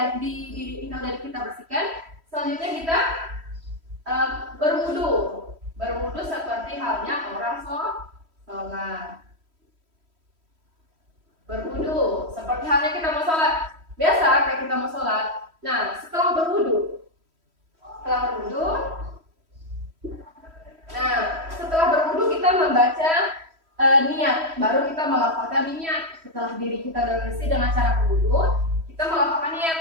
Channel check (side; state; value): left; late; 3.1 ms